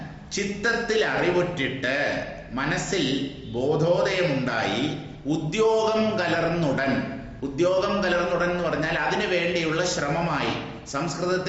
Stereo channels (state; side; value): identical; both; correlation 1.00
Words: ചിത്തത്തിൽ അറിവുറ്റിട്ട് മനസ്സിൽ ബോധോദയമുണ്ടായി ഉദ്യോഗം കലർന്നുടൻ എന്ന് പറഞ്ഞാൽ അതിനു വേണ്ടിയുള്ള ശ്രമമായി.